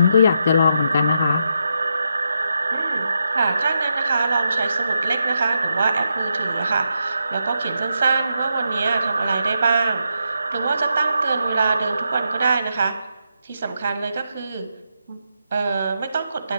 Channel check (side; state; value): both; inverted; correlation -0.83